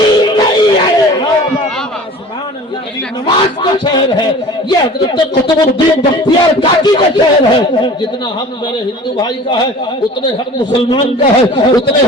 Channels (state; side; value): normal; both; correlation 0.43